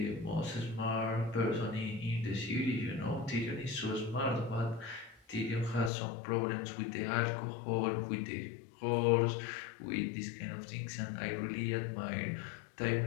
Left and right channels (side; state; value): right; drops out; at 5.9 s